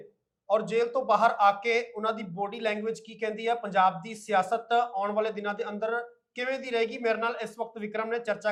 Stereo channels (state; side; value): identical; both; correlation 1.00